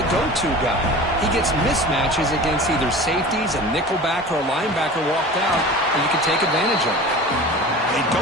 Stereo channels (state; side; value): normal; both; correlation 0.37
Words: go-to guy. He gets mismatches against either safeties, a nickelback, or a linebacker walked out, and you can take advantage of it. They